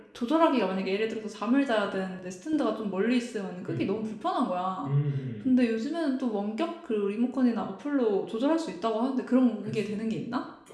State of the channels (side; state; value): both; identical; correlation 1.00